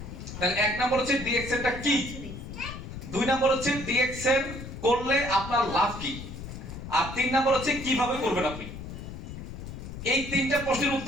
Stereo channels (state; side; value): noise; left; rumble, 10 dB below the sound